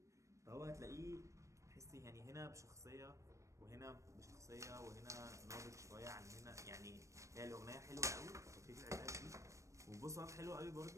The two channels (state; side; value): late; left; 0.15 ms